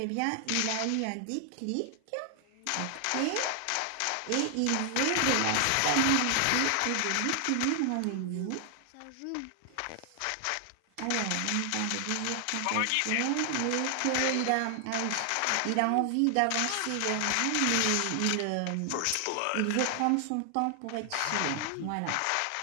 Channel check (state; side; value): different; both; correlation 0.00